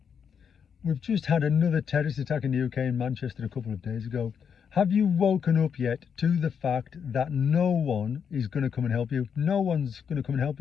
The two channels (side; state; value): right; quieter; 7.1 dB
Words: We've just had another terrorist attack in the UK in Manchester a couple of days ago. Have you woken up yet to the fact that no one is going to come and help you? No one's going to come and help